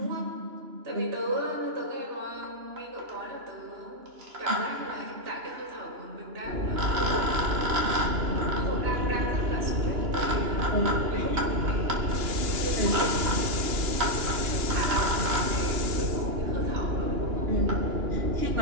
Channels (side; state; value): left; late; 2.9 ms